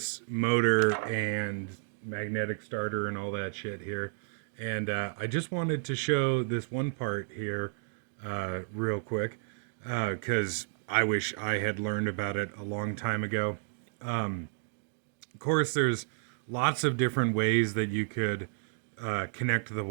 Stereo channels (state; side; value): silent; left; digital silence